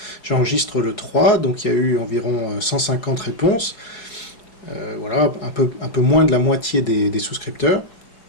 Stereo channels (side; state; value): right; late; 4.7 ms